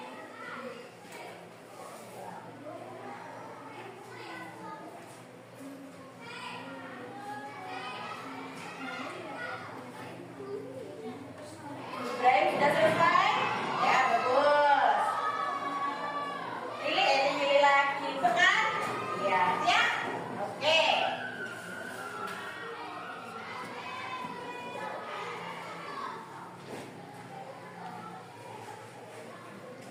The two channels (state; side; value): identical; both; correlation 1.00